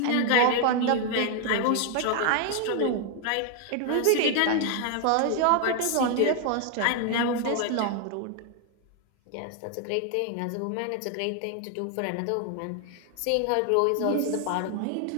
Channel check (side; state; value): both; different; correlation 0.00